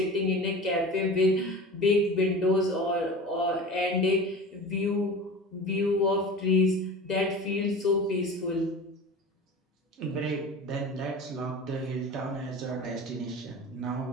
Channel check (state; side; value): normal; both; correlation 0.35